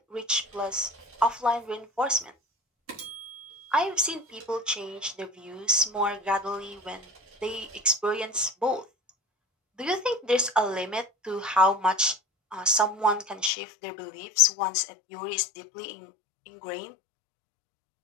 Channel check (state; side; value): drops out; right; at 13.5 s